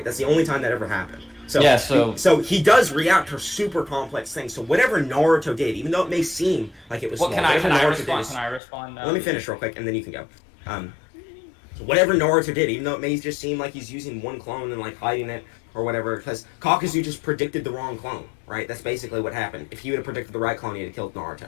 That's the only time that ever happened. So, yeah, so he does react to super complex things. So whatever Naruto did, even though it may seem like it was well, small, can I Naruto respond? did, Can I respond now? let me finish real quick, and then you can go. So whatever Naruto did, even though it may just seem like he's using one clone and like hiding it or whatever, because Kakuzu just predicted the wrong clone, right? That's basically what happened. If he would have predicted the right clone, he'd have killed Naruto,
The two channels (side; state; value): right; drops out; at 8.6 s